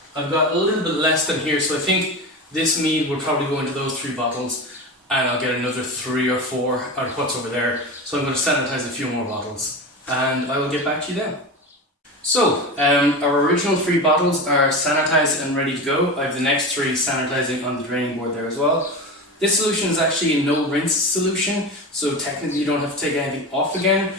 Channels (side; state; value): both; normal; correlation 0.25